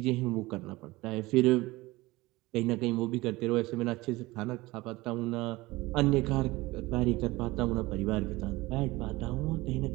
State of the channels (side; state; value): left; quieter; 20.5 dB